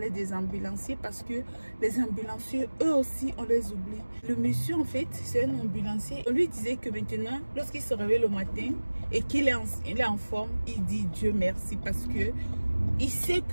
des ambulanciers parce que les ambulanciers, eux aussi, on les oublie. Le monsieur, en fait, c'est un ambulancier. On lui disait que maintenant, lorsqu'il se réveille le matin et qu'il est en forme, il dit Dieu merci parce que il sait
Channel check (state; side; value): inverted; both; correlation -1.00